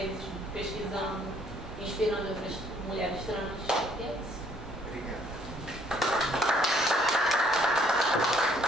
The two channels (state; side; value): normal; both; correlation 0.64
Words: pesquisando, inspirando outras mulheres trans. E é isso. Obrigada.